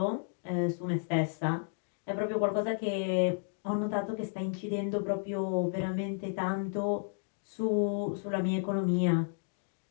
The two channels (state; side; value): silent; right; digital silence